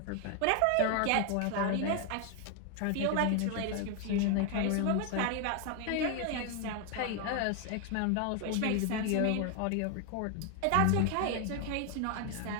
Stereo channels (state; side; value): different; both; correlation 0.01